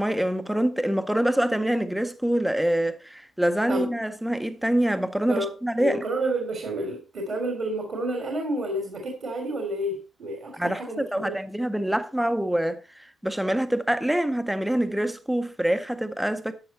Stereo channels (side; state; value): both; normal; correlation 0.92